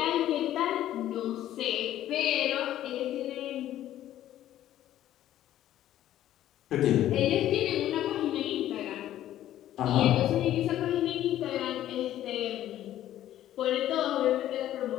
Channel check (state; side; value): quieter; right; 12.7 dB